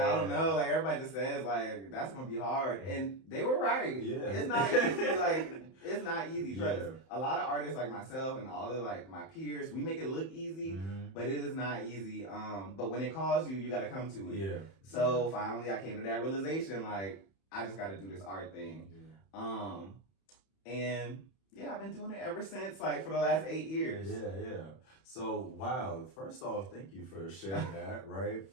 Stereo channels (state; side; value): late; right; 31 ms